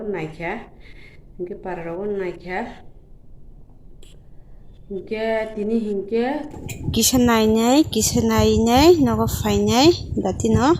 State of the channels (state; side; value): identical; both; correlation 1.00